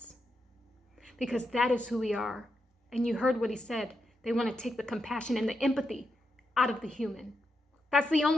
because that is who we are. And you heard what he said. They want to take the compassion and the empathy out of the human. That's the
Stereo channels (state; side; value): normal; both; correlation 0.85